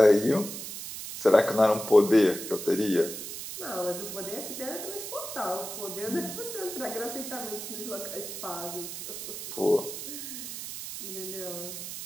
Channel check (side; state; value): right; noise; hiss, 8 dB below the sound